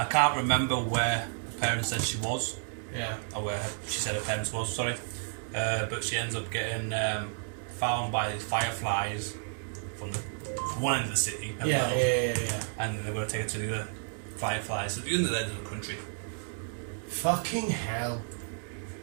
can't remember where the parents said she was. Yeah. Or where she said her parents was, sorry. But she ends up getting found by fireflies from one end of the city. Yeah. And they're going to take her to the other fireflies at the other end of the country. Fucking hell.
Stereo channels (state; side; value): silent; left; 57 dB below the other